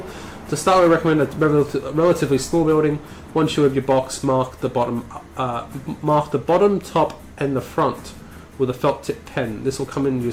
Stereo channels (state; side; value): identical; both; correlation 1.00